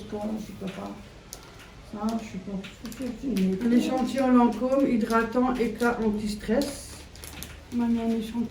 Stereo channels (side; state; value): both; identical; correlation 1.00